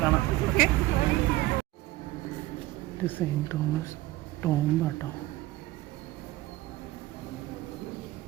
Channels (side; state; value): left; quieter; 17.4 dB